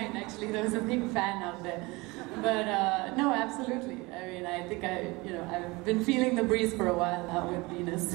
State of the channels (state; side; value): quieter; left; 24.0 dB